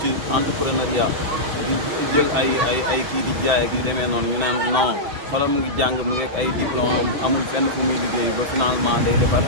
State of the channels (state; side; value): late; left; 6.1 ms